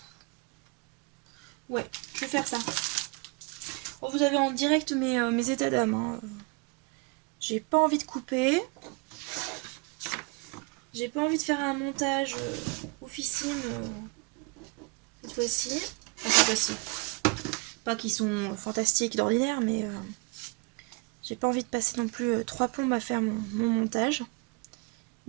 ouais, je vais faire ça. Bon, vous avez en direct mes états d'âme. Hein. J'ai pas envie de couper. J'ai pas envie de faire un montage oufissime cette fois-ci. Enfin, cette fois-ci. Pas qu'ils sont fantastiques d'ordinaire, mais j'ai pas envie de passer non plus 3 plombes à faire mon montage.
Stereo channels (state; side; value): quieter; left; 29.9 dB